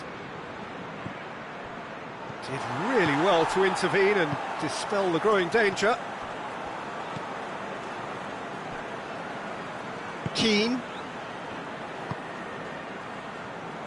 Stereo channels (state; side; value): identical; both; correlation 1.00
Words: Did really well to intervene and dispel the growing danger. Keane.